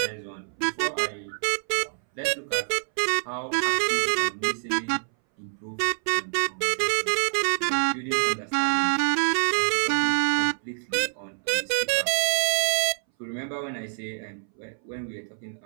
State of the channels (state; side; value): silent; left; 60 dB below the other